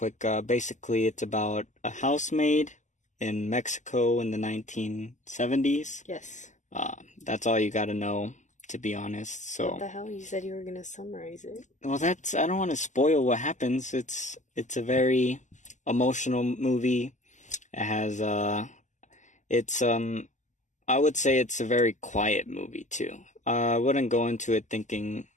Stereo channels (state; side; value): late; right; 0.35 ms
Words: Basically, it's about a housemaid in Mexico in the 1970s. Yes. That's all you got to know, to be honest. So, What the hell? You said you were gonna summarize it. well, I don't want to spoil what happens. It's a very emotional movie. It has it's I would say it's a very quiet movie too. I wouldn't go into it thinking